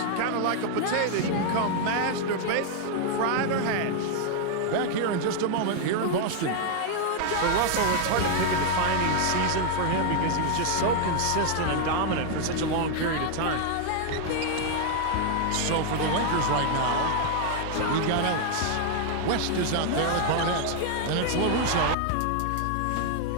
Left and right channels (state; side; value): different; both; correlation 0.00